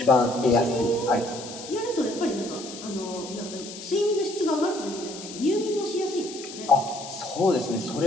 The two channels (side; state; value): left; noise; hiss, 12 dB below the sound